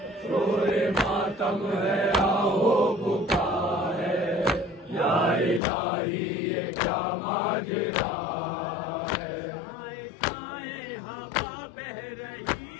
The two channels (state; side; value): drops out; right; at 5.6 s